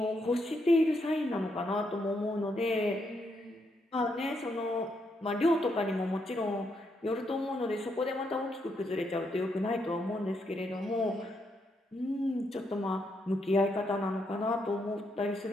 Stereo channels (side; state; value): both; normal; correlation 0.78